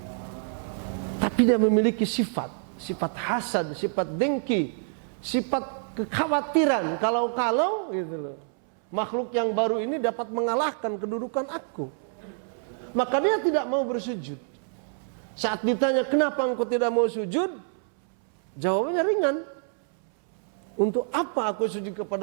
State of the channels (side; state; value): left; silent; 60 dB below the other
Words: Tapi dia memiliki sifat hasad, sifat dengki, sifat kekhawatiran kalau gitu loh. Makhluk yang baru ini dapat mengalahkan kedudukan aku. Maka dia tidak mau bersujud. Saat ditanya, kenapa engkau tidak mau sujud? Jawabannya ringan. Untuk apa aku sujud